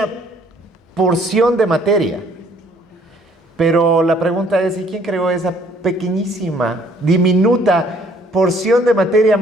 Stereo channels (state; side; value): normal; both; correlation 0.61